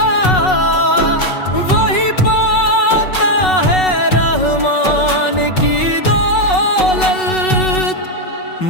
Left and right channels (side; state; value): right; late; 5.4 ms